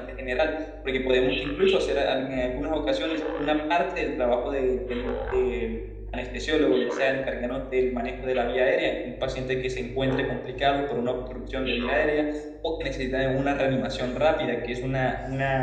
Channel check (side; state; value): both; identical; correlation 1.00